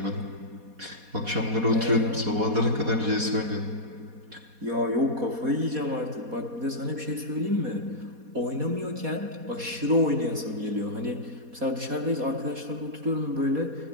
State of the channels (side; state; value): left; late; 4.2 ms